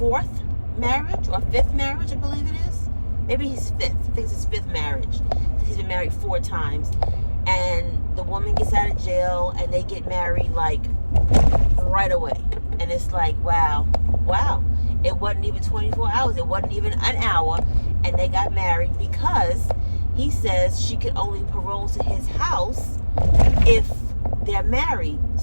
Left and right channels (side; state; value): both; inverted; correlation -1.00